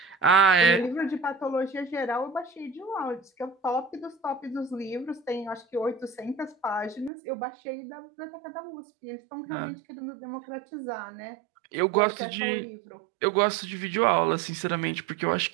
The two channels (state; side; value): drops out; left; at 7.1 s